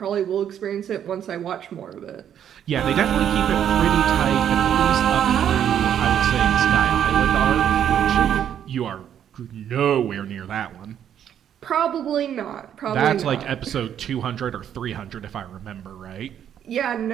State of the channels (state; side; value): quieter; left; 9.6 dB